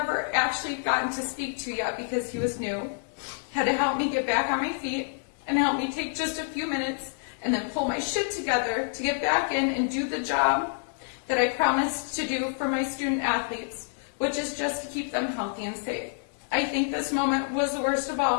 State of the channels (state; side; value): silent; right; 59 dB below the other